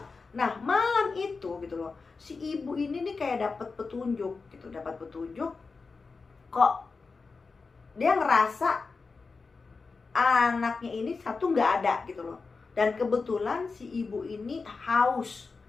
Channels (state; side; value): quieter; right; 4.4 dB